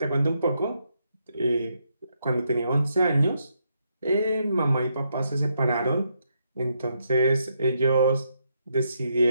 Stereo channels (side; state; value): both; inverted; correlation -0.78